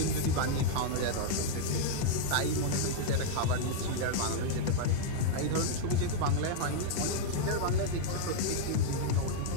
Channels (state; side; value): different; both; correlation -0.01